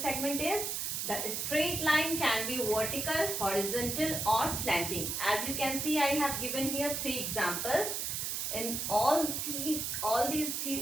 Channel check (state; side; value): noise; right; hiss, 2 dB below the sound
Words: is the straight line can be vertical, horizontal or slanting. As you can see, I have given here 3 examples. In all these